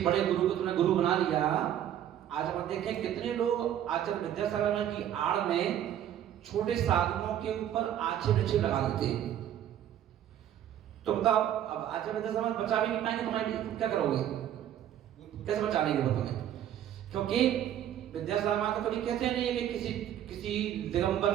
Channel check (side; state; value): left; quieter; 10.9 dB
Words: बड़े गुरु को तुमने गुरु बना लिया। आज हम देखें कितने लोग आचार्य विद्यासागर की आड़ में छोटे साधुओं के ऊपर आक्षेप लगा देते हैं। तो बताओ, अब आचार्य विद्यासागर बचा भी नहीं पाएंगे, तुम्हारे क्या करोगे? कैसे बचा लेंगे वो तुम्हें? क्योंकि विद्यासागर तो कभी कहते नहीं है कि किसी दिगंबर